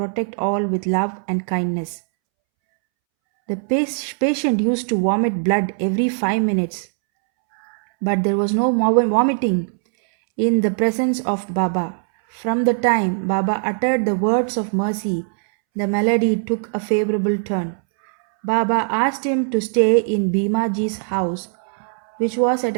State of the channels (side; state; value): left; silent; 65 dB below the other